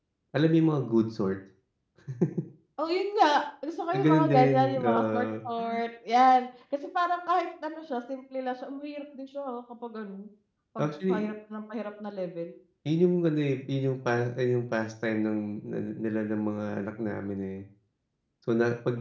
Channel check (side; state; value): both; identical; correlation 1.00